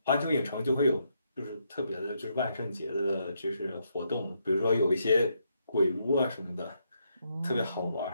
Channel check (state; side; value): inverted; both; correlation -0.77